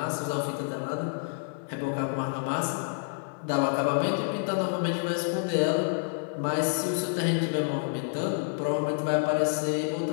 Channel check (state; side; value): silent; right; digital silence